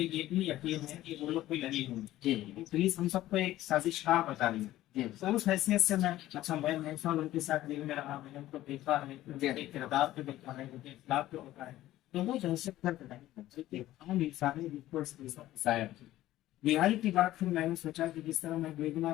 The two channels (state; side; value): quieter; right; 14.9 dB